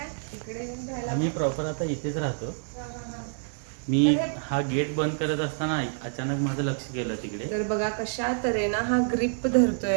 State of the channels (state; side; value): silent; left; digital silence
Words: इकडे येऊन राहिला? आम्ही प्रॉपर आता इथेच राहतो. मी हा गेट बंद करत असताना अचानक माझं लक्ष गेलं तिकडे. तर बघा कशा तऱ्हेनं हा ग्रिप